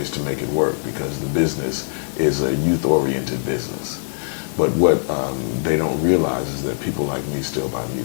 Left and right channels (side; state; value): right; silent; digital silence